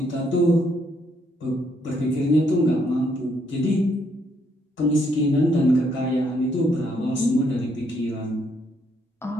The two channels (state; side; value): normal; both; correlation 0.72